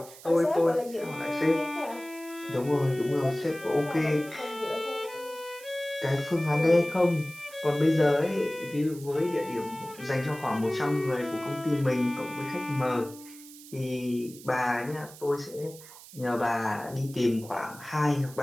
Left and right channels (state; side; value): noise; right; hiss, 18 dB below the sound